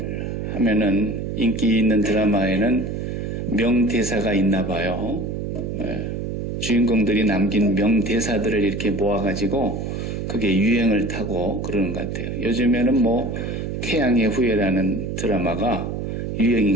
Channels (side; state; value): right; noise; hum, 4 dB below the sound